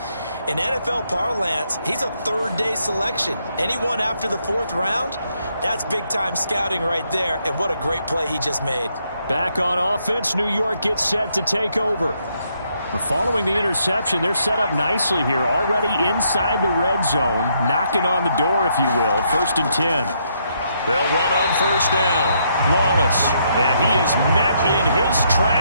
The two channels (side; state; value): both; inverted; correlation -0.74